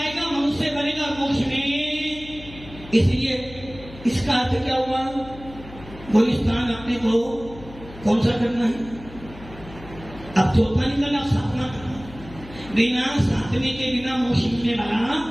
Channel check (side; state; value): left; noise; hum, 17 dB below the sound